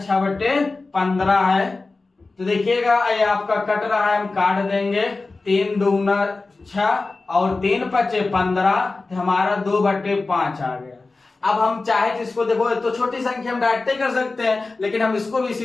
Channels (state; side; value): quieter; right; 3.6 dB